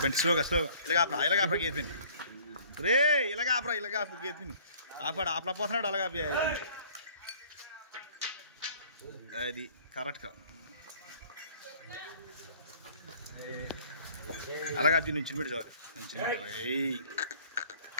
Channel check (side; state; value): both; inverted; correlation -0.54